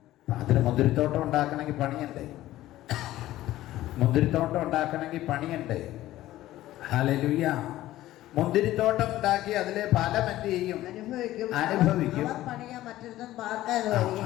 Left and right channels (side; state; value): right; quieter; 15.1 dB